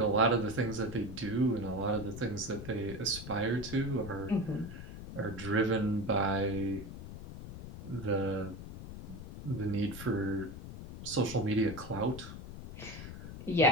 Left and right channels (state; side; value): noise; left; rumble, 11 dB below the sound